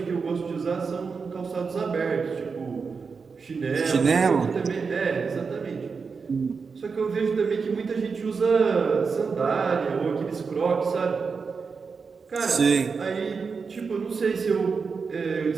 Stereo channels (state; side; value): quieter; left; 5.2 dB